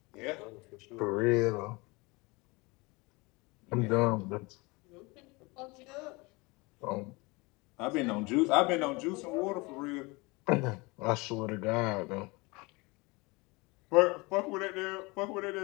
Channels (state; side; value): quieter; right; 25.5 dB